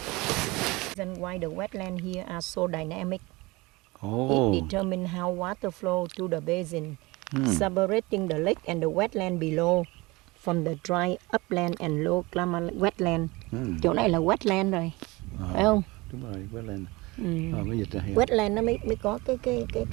Why the wetlands here are so dynamic. Oh. It determines how water flow to the basin, separating the lake and the wetland below from the dry upland and low climate wetland. Chỗ này là wetland rồi, phải không? Đúng rồi, wetland. Mới dịch ra hiểu. Wetland nó mới có cái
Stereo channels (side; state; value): left; quieter; 23.0 dB